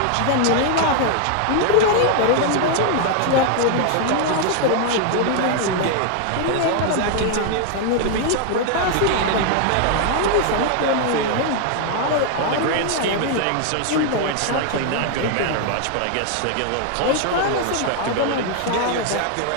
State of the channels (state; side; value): different; both; correlation 0.00